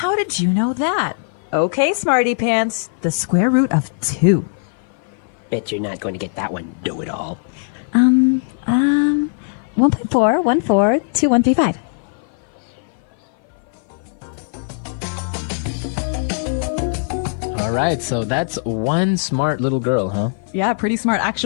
did you know that? Okay, smarty pants. The square root of 2. Bet you're not going to get that one, know-it-all. 1.4, 1.4, 2, 135. All right, so that's one smart little girl, huh? Yeah, pretty smart.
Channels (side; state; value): right; silent; 56 dB below the other